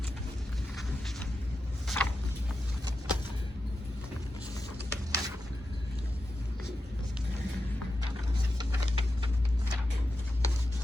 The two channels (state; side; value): normal; both; correlation 0.90